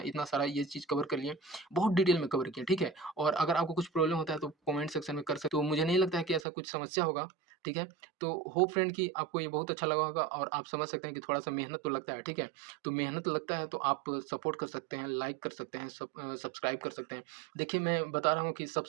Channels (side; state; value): left; drops out; at 6.5 s